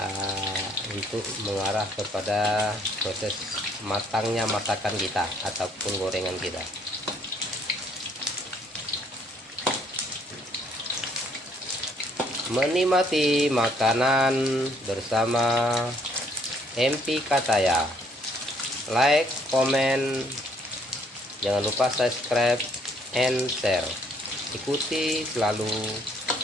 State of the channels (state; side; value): normal; both; correlation 0.66